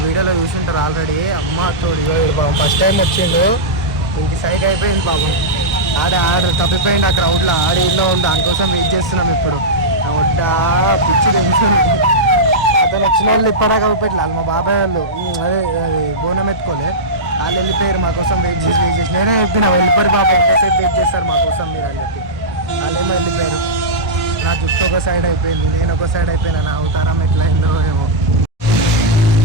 వీడియోలో చూసింటారు ఆల్రెడీ. అమ్మ తోడు బాబు ఫస్ట్ టైం వచ్చిండు. ఇంక సైడ్ అయిపోయింది బాబు. ఆడ తప్పిపోయింది ఆ క్రౌడ్లో. ఆడేళ్ళలో ఉంది, దానికోసం వెయిట్ చేస్తున్నాం. ఇప్పుడు వడ్డా పిచ్చి టెన్షన్. అతను వచ్చిన వాళ్ళు ఇప్పటిదాకా పెట్టాలి. మా బాబాయ్ వాళ్ళు అదే బోనం ఎత్తుకోలే, వాళ్ళు వెళ్ళిపోయారు. మా కోసం వెయిట్ చేసి నేనే చెప్పిన వెళ్ళిపోయి బాబా ఎంతసేపు వెయిట్ చేస్తారు మా కోసం మీరు అని చెప్పి. వాళ్ళేమో వెళ్ళిపోయారు. నా జుట్టు ఒక సైడ్ అయిపోయింది, నేను ఒక సైడ్ అయిపోయినా. నా అవతారం ఎట్లా అయిందో ఏమో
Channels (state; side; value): normal; both; correlation -0.11